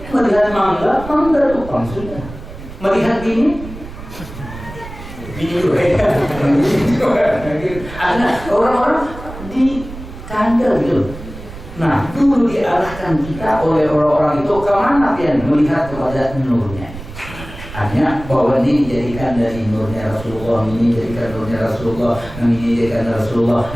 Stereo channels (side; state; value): right; noise; rumble, 13 dB below the sound